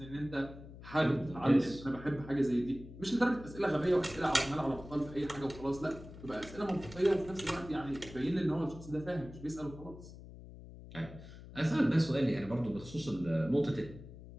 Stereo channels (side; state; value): left; noise; hum, 15 dB below the sound